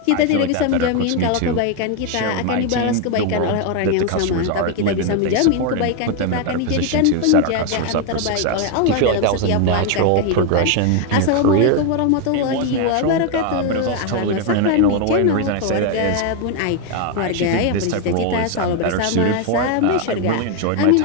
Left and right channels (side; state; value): both; different; correlation 0.01